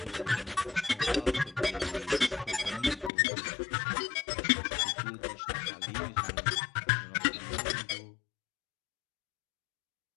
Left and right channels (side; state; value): right; drops out; at 3.1 s